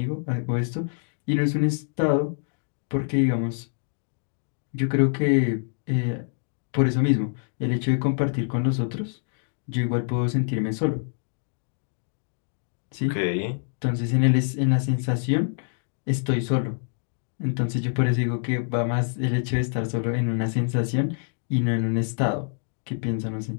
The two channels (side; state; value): right; silent; digital silence